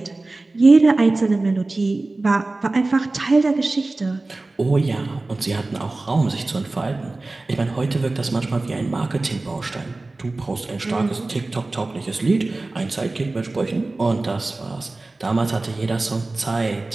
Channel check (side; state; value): left; quieter; 3.1 dB